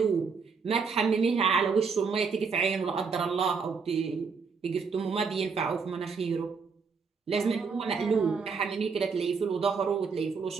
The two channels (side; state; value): left; quieter; 5.3 dB